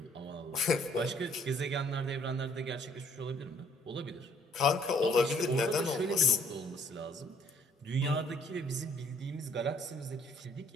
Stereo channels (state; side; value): normal; both; correlation 0.62